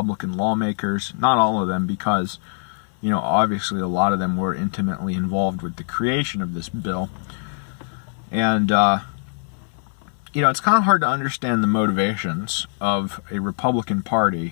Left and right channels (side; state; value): right; silent; 60 dB below the other